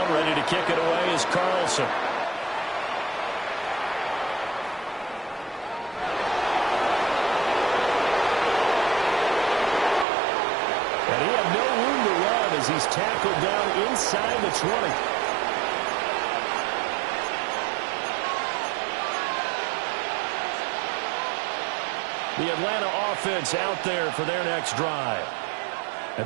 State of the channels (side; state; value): left; drops out; at 10.1 s